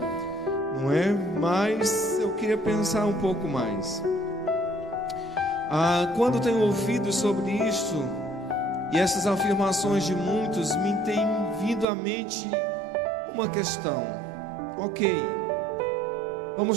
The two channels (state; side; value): drops out; left; at 11.9 s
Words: não é? Mas eu queria pensar um pouco mais. Quando tenho ouvido sobre isso e essas afirmações de muitos, me tem vindo à mente uma questão. Ok,